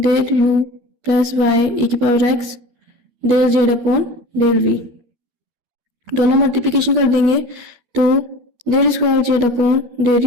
u plus y e की power x del Z upon del v। दोनों मल्टीप्लिकेशन कर देंगे तो del square Z upon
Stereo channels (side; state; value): left; late; 12 ms